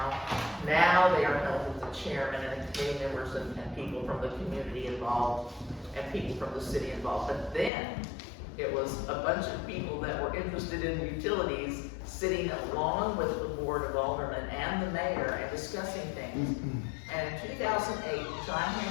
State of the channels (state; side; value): drops out; right; at 7.7 s